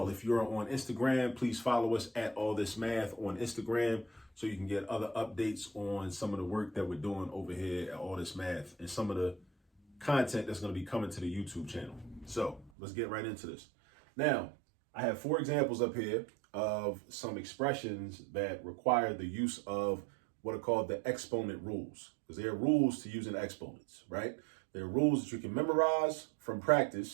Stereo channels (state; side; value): drops out; left; at 12.7 s